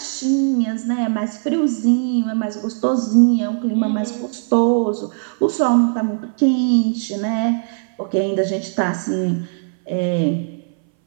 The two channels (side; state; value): left; silent; 61 dB below the other